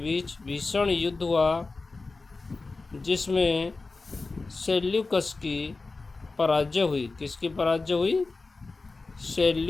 भीषण युद्ध हुआ जिसमें सेल्यूकस की पराजय हुई। किसकी पराजय हुई?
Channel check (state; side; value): quieter; right; 3.7 dB